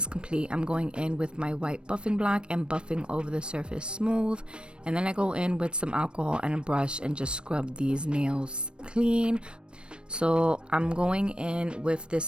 complete, I'm going in with my white buffing block and buffing over the surface smooth. And then I go in with some alcohol and a brush and just scrub these nails clean. So I'm going in with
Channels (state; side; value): late; left; 0.055 ms